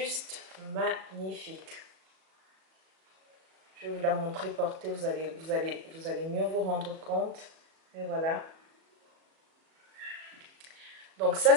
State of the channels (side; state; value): left; late; 37 ms